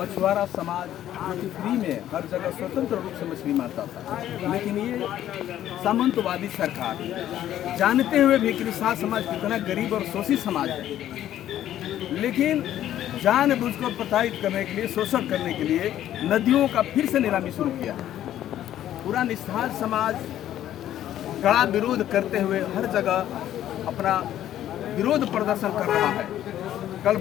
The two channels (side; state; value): right; quieter; 12.0 dB